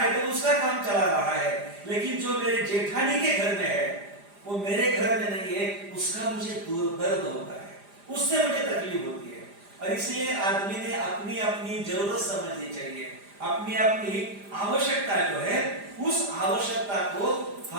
तो उसका काम चला रहा है। लेकिन जो मेरे जेठानी के घर में है वो मेरे घर में नहीं है, उसका मुझे दर्द होता है, उससे मुझे तकलीफ होती है। और इसलिए आदमी ने अपनी अपनी जरूरत समझनी चाहिए, अपनी अपनी आवश्यकता जो है उस आवश्यकता को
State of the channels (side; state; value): left; late; 5.0 ms